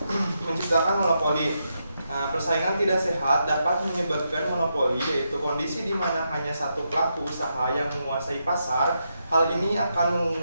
menciptakan monopoli. Nah, persaingan tidak sehat dapat menyebabkan monopoli, yaitu kondisi di mana hanya satu pelaku usaha yang menguasai pasar. Hal ini akan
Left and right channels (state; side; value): inverted; both; correlation -0.83